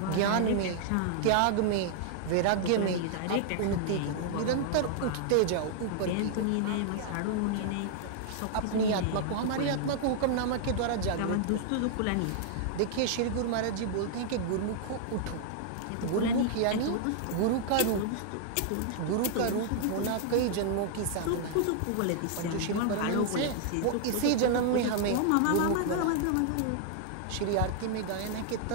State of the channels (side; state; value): both; different; correlation -0.01